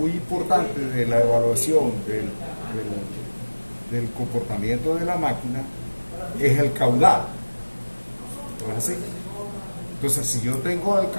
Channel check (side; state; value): both; inverted; correlation -1.00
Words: importante de la evaluación del comportamiento de la máquina es el caudal. ¿No es así? Entonces, si yo tengo el